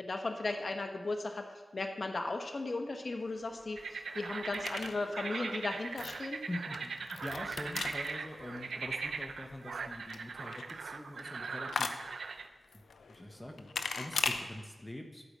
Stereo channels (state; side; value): normal; both; correlation 0.90